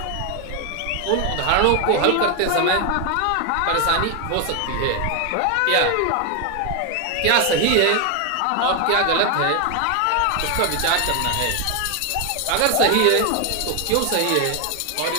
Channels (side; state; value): both; different; correlation 0.01